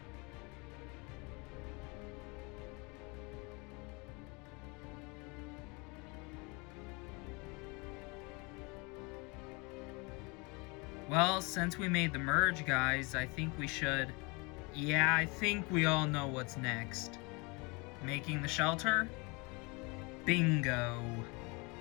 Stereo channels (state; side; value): quieter; right; 28.6 dB